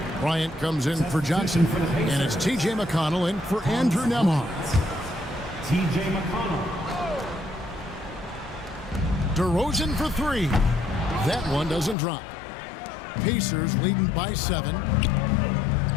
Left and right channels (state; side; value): drops out; right; at 12.0 s